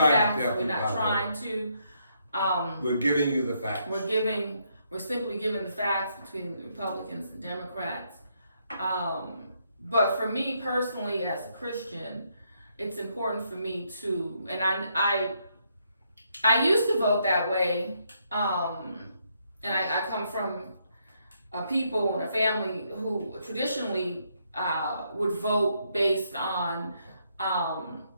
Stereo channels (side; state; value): both; inverted; correlation -0.75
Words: We're not trying to. We're giving you the facts. We're simply giving the facts between the Republicans and Democrats. But for me personally, as a Christian, it's important for me to, and I used to vote that way, and I come from a people and a family who traditionally would vote based on